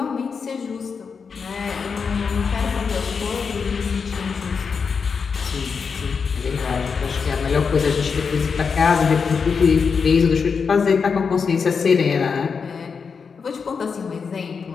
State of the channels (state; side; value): quieter; right; 5.6 dB